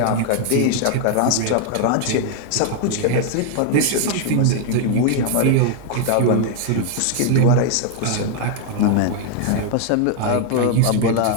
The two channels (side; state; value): both; different; correlation 0.00